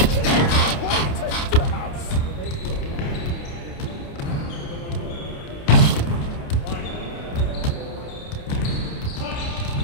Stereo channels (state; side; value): late; right; 28 ms